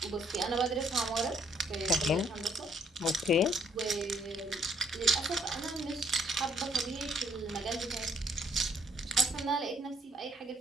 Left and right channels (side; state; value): both; normal; correlation 0.65